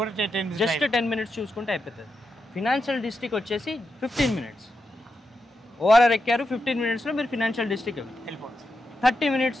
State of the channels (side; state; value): both; normal; correlation 0.86